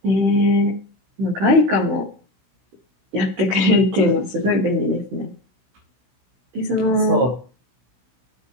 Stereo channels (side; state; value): left; late; 16 ms